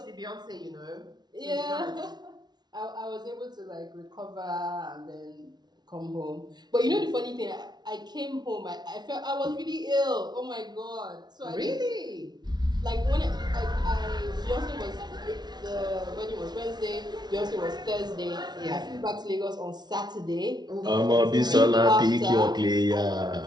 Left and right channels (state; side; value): late; left; 0.20 ms